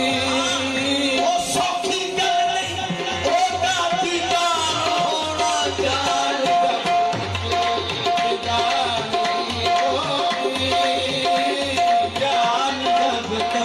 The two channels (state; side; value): identical; both; correlation 1.00